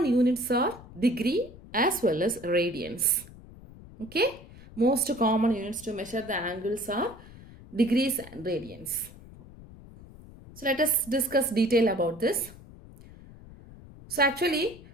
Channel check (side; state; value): left; noise; rumble, 19 dB below the sound